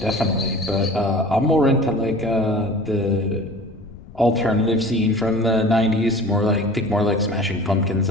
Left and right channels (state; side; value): noise; left; rumble, 18 dB below the sound